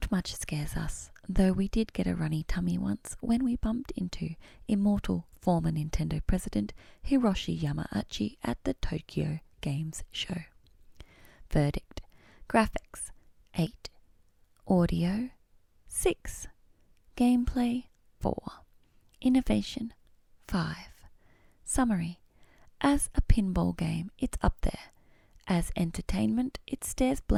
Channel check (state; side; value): identical; both; correlation 1.00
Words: much scares us, though we did get a runny tummy once when we bumped into immortal former Nintendo president Hiroshi Yamauchi at the Tokyo Games Show. Verdict: graphics 8, audio 6, gameplay 4, innovation 5. Summary: as a pinball game, it's up there. As entertainment, it stares